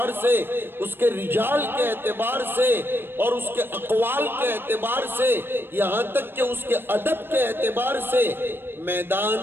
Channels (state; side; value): late; left; 0.10 ms